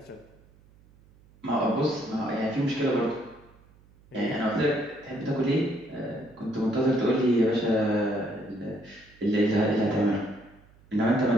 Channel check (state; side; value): noise; right; hum, 28 dB below the sound